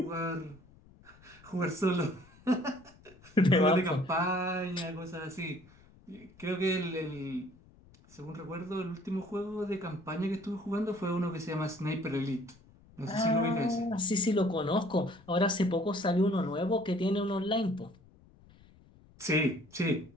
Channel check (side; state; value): left; noise; rumble, 25 dB below the sound